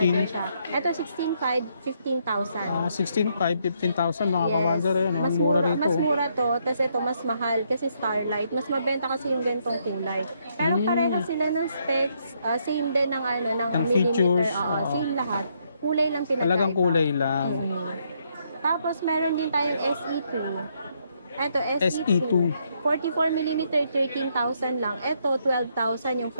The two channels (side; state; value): both; inverted; correlation -0.74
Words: din siya. Ito 16,500, 15,000. 16,500, 15,000 mga ka-wonder. Mas mura rito. Mas mura to, tapos ito mas mahal kasi Starlight. Mas mabenta kasi yung ganitong kulay. Pero pareho sila ng specs, same din ng ng features, millimeter. Same lahat. Kulay lang pinagkaiba. Talagang kulay lang. Tapos meron din tayong SE2. Ito, SE2. 44mm, 13,000 lang. Ito, 12,000 yung